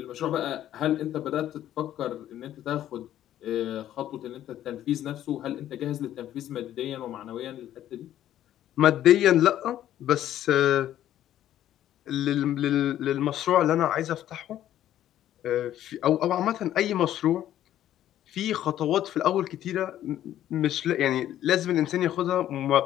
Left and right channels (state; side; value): quieter; right; 12.1 dB